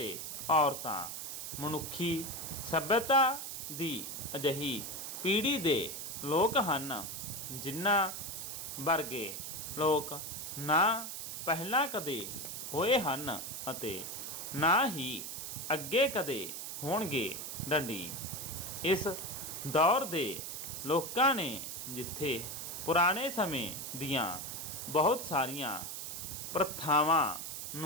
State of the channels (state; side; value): noise; right; hiss, 6 dB below the sound